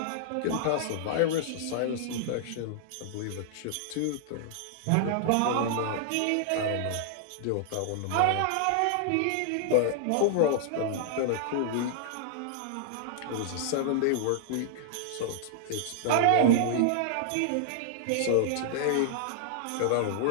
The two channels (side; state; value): both; different; correlation -0.01